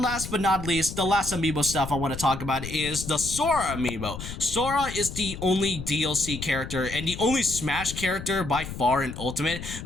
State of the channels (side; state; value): left; noise; rumble, 9 dB below the sound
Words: last but not least, the last amiibo stuff I want to talk about is the Sora amiibo. Sora is the only DLC character and the only Smash character by far in Ultimate